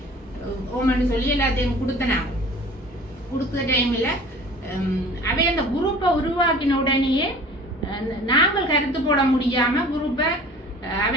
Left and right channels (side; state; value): both; normal; correlation 0.45